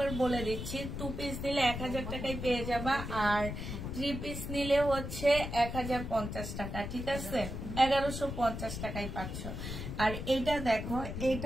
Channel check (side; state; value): left; noise; rumble, 6 dB below the sound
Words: বলে দিচ্ছি, 2 পিস নিলে 1000 টাকায় পেয়ে যাবা, আর 3 পিস নিলে হচ্ছে 1050 টাকা, ঠিক আছে 1150 টাকায় পাচ্ছ। আর এইটা দেখো,